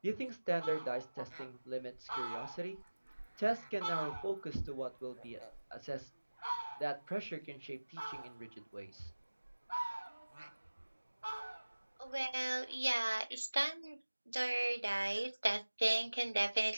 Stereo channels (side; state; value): both; inverted; correlation -1.00